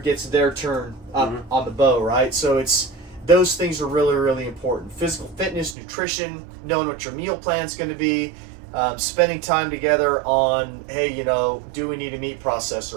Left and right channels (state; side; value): drops out; left; at 5.8 s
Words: their turn up mm-hmm. on the bow, right? So it's, those things are really, really important. Physical fitness, nutrition, knowing what your meal plan's going to be, spending time together on, hey, do we need a meat